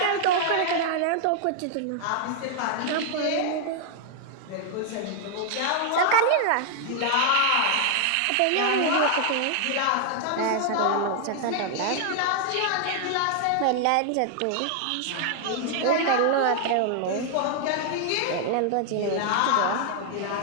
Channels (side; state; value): both; different; correlation 0.00